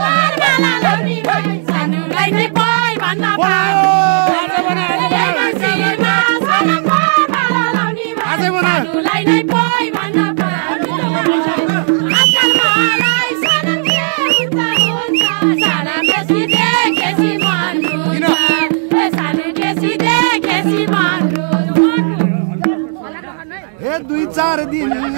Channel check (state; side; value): silent; left; digital silence